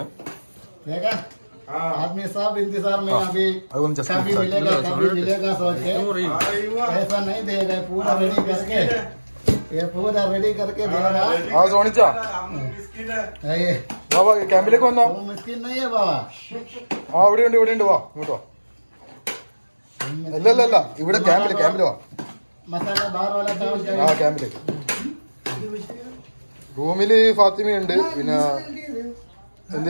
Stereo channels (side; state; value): both; inverted; correlation -1.00